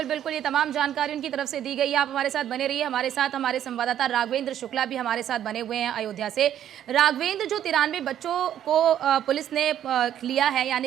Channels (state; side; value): quieter; left; 10.6 dB